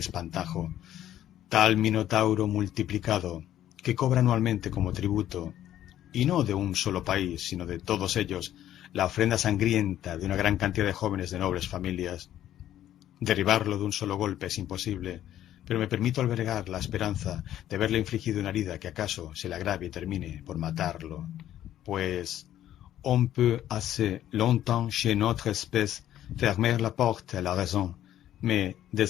tal minotauro multiplicado, que cobra anualmente como tributo, y no de un solo país, sino de todos ellos, la ofrenda sangrienta de una gran cantidad de jóvenes de nobles familias. Derribarlo de un solo golpe es imposible, pero me permito albergar la esperanza de haberle infligido una herida que acaso se le agrave y termine por matarlo, pues on peut assez longtemps chez notre espèce fermer la porte à la raison, mais dès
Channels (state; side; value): quieter; right; 12.1 dB